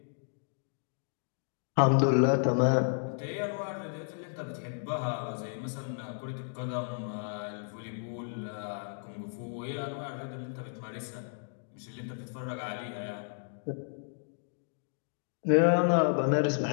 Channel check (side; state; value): right; silent; digital silence